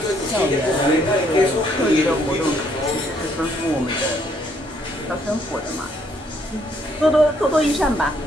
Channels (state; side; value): normal; both; correlation 0.69